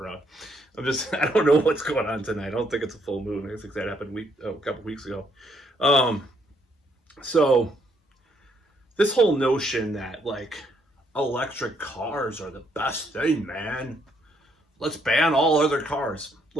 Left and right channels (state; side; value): normal; both; correlation 0.71